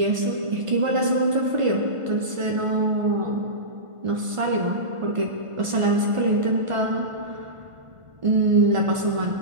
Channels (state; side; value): late; left; 1.5 ms